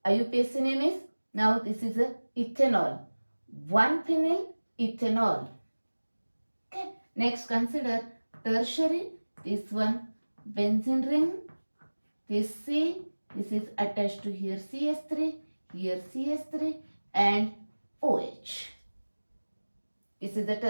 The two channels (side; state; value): both; inverted; correlation -1.00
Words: IUPAC name is, now this is a ethanol, 1-phenyl ethanol. Okay, next consider tertiary. This one benzene ring, this C, this is attached to here CH3, here CH3 and OH. This is the